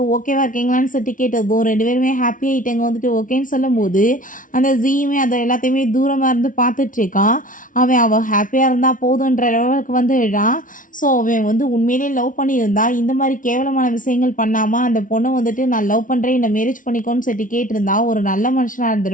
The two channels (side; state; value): right; late; 0.38 ms